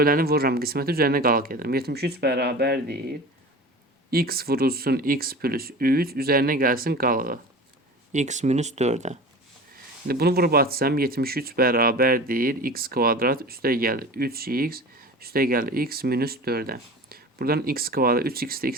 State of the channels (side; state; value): both; normal; correlation 0.36